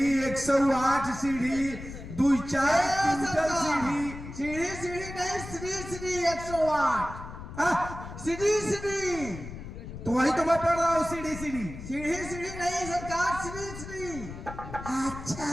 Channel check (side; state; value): left; noise; rumble, 11 dB below the sound